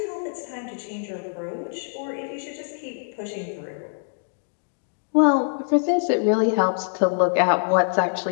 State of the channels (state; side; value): silent; right; digital silence